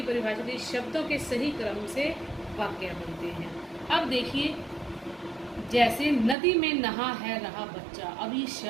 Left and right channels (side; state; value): left; drops out; at 6.4 s